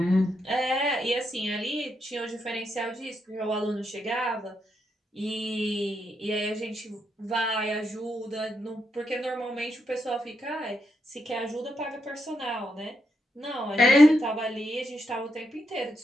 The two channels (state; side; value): normal; both; correlation 0.81